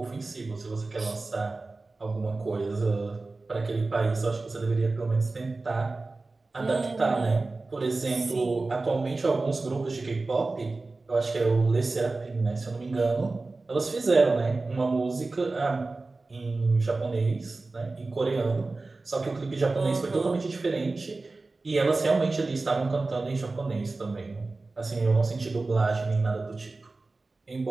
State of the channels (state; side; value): quieter; left; 3.5 dB